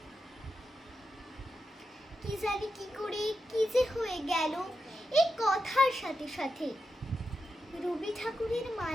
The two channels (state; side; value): normal; both; correlation 0.88